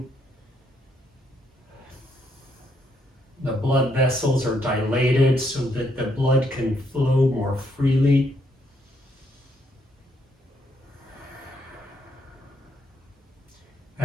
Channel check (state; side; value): normal; both; correlation 0.74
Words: The blood vessels are dilated so that the blood can flow more freely.